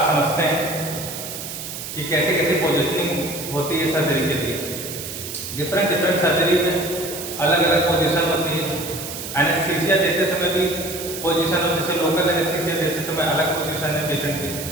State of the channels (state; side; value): noise; right; hiss, 8 dB below the sound